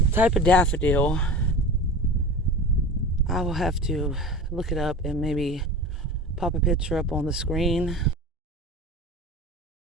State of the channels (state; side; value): normal; both; correlation 0.34